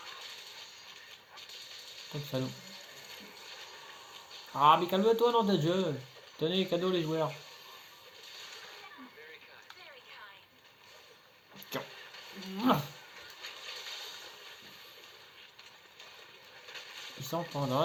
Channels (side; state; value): both; identical; correlation 1.00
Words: Comme salaud. Ah mais calme-toi dans ta jeu. Tenez, cadeau les joueurs. Tiens. Il s'en prend dans